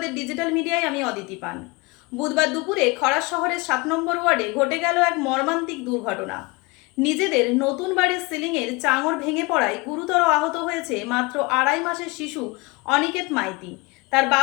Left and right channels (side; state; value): right; quieter; 25.3 dB